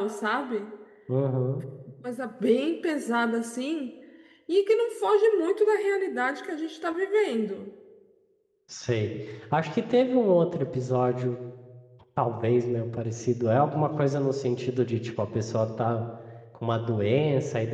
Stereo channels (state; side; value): identical; both; correlation 1.00